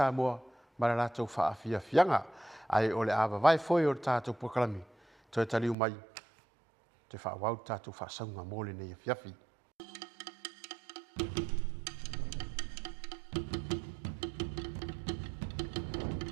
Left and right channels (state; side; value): drops out; left; at 5.8 s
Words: ma la tau faafia fianga ai o le ava vai foi o tātou pokalami toi taliu mai te whaawau tātou whaasaunga mōle nei fiafi.